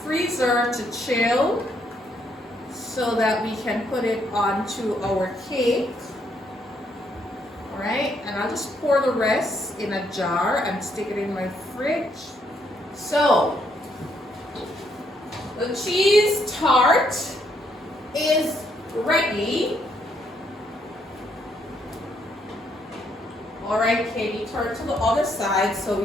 to chill so that we can put it onto our cake. All right, and I'll just pour the rest in a jar and stick it in my fridge. So, the cheese tart is ready. All right, Katie, turn to the other side so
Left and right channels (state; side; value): normal; both; correlation 0.73